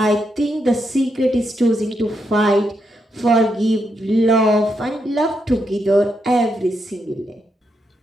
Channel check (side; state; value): both; normal; correlation 0.81